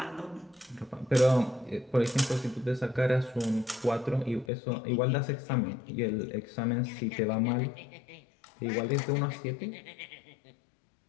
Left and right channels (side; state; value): right; drops out; at 4.5 s